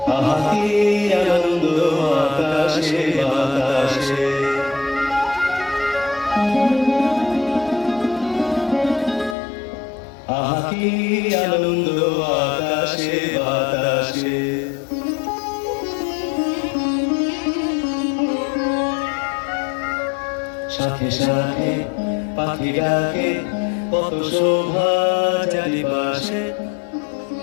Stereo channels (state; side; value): drops out; right; at 9.3 s